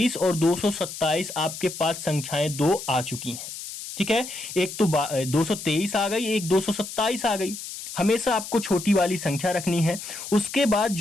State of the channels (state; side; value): noise; left; hiss, 10 dB below the sound